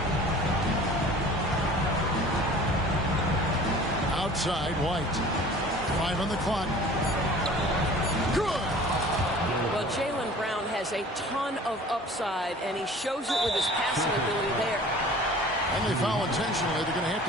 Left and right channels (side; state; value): both; normal; correlation 0.46